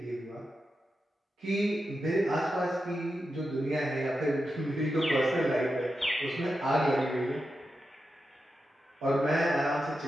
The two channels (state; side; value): normal; both; correlation 0.89